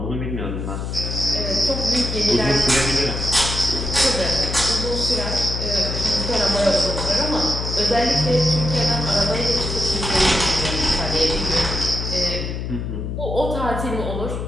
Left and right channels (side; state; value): left; noise; hum, 4 dB below the sound